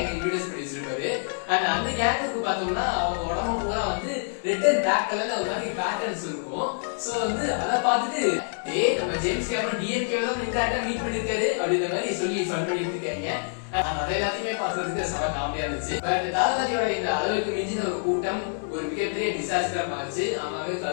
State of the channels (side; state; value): right; silent; digital silence